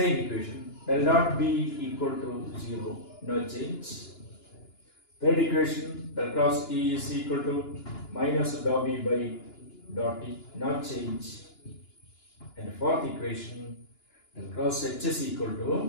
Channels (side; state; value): right; late; 2.9 ms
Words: equation, del dot B equal to 0, no change. Third equation, del cross E is equal to minus dot B by dot T, no change. And fourth equation, del cross H is equal